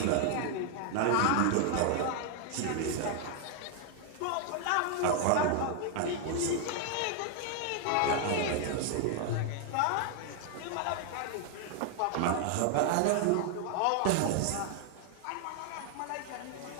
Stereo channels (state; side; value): different; both; correlation 0.00